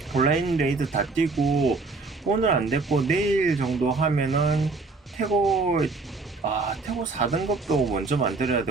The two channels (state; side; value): quieter; left; 3.8 dB